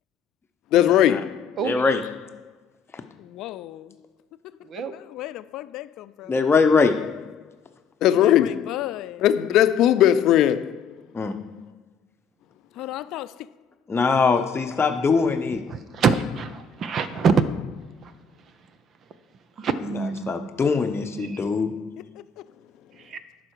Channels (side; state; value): right; quieter; 5.1 dB